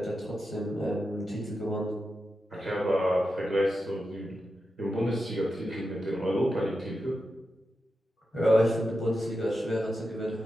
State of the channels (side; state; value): both; normal; correlation 0.89